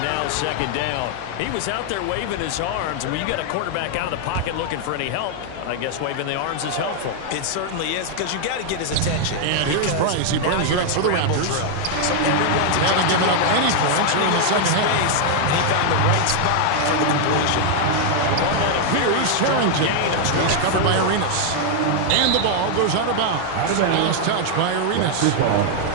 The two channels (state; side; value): different; both; correlation 0.00